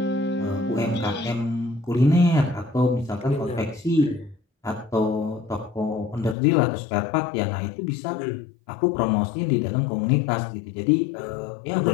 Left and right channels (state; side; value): drops out; right; at 6.4 s